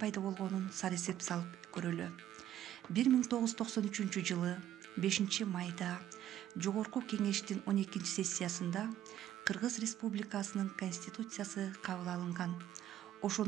болгонун сарысеп салып көрөлү. 1993 жылы 5-майда Жогорку Кеңештин 12-сессиясында Кыргыз Республикасынын Конституциясы кабыл алынган.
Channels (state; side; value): quieter; left; 11.8 dB